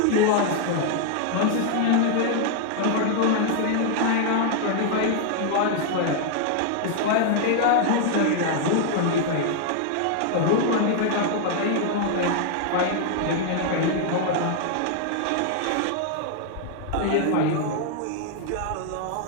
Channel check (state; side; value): different; both; correlation 0.00